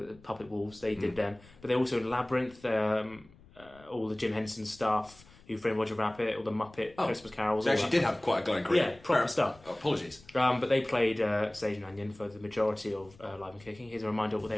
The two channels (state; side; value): noise; left; rumble, 25 dB below the sound